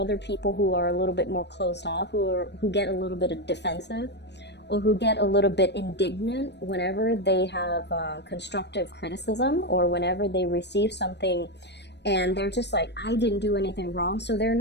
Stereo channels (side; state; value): right; late; 0.50 ms